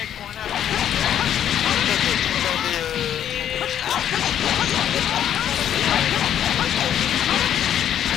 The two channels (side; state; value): right; quieter; 10.1 dB